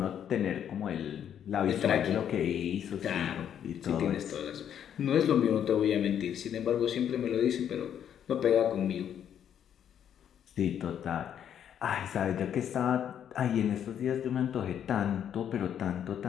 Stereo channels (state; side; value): quieter; right; 9.3 dB